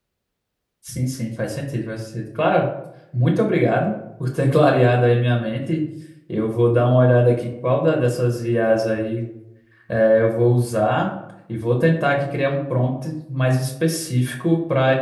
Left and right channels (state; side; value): identical; both; correlation 1.00